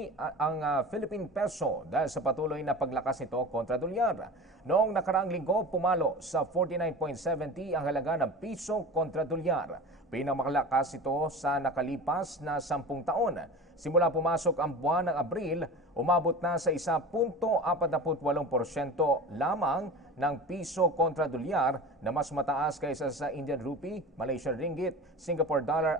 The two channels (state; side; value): normal; both; correlation 0.33